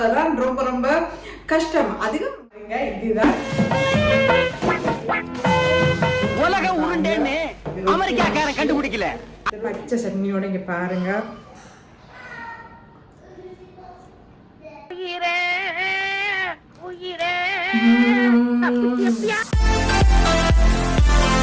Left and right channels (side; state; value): both; identical; correlation 1.00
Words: ரொம்ப ரொம்ப கஷ்டம். அதிகம் இதுதான் உலக உருண்டேன்னு அமெரிக்காக்காரன் கண்டுபிடிக்கல. பச்சை சட்னியோட இங்க பாருங்க.